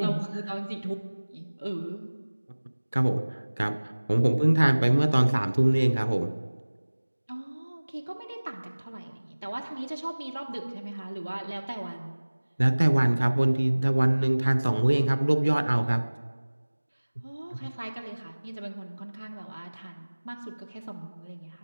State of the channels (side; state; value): both; inverted; correlation -1.00